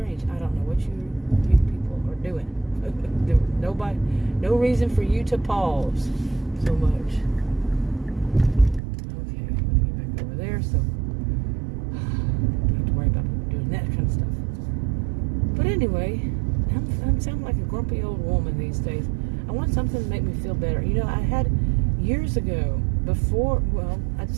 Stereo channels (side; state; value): left; drops out; at 8.8 s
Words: I don't know what you people are doing. Nobody, no reason for you to pause so much. Okay, I'm gonna get back over there, so don't have to worry about doing that kind of stuff. But anyway, I'm sounding like a grumpy old woman these days. I want something to make me feel better. You know, I had years ago, before, well, I'd